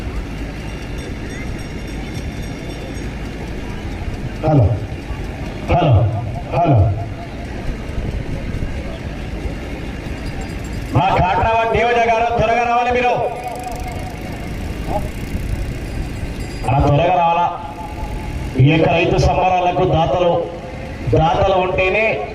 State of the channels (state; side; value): identical; both; correlation 1.00